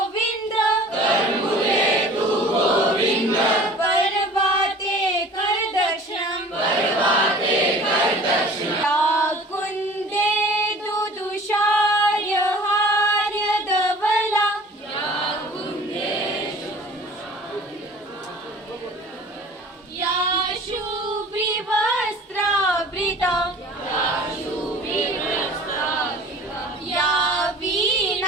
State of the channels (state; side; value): normal; both; correlation 0.45